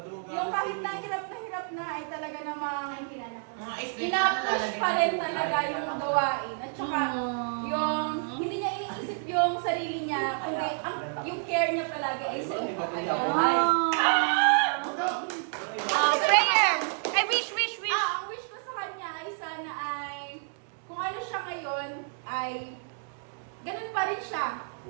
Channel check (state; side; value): silent; left; 58 dB below the other